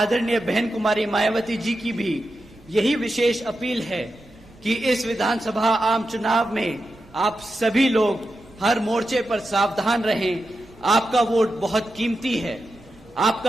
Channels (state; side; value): noise; right; rumble, 26 dB below the sound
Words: बहन कुमारी मायावती जी की भी यही विशेष अपील है कि इस विधानसभा आम चुनाव में आप सभी लोग हर मोर्चे पर सावधान रहें। आपका वोट बहुत कीमती है।